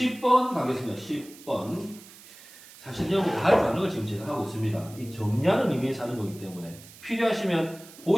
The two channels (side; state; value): right; noise; hiss, 20 dB below the sound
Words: 10번 가겠습니다. 10번. 사실 여러분 다 할 줄 아는 걸 지금 제가 하고 있습니다. 이 정리하는 의미에서 하는 거기 때문에 필요하시면